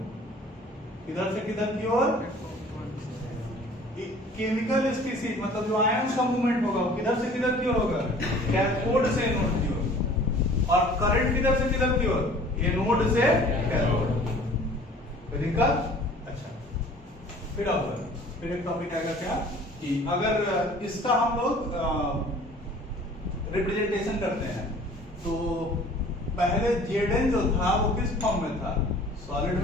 इधर से किधर की ओर? केमिकल स्पीशीज मतलब जो आयन का मूवमेंट होगा वो किधर से किधर की ओर होगा? कैथोड से एनोड की ओर। और करंट किधर से किधर की ओर? एनोड से कैथोड। कोई दिक्कत? अच्छा, फिर एक टॉपिक आएगा क्या कि अगर इसका हम लोग रिप्रेजेंटेशन करते हैं तो पहले Zn जो था वो किस फॉर्म में था? सॉलिड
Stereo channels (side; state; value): both; normal; correlation 0.49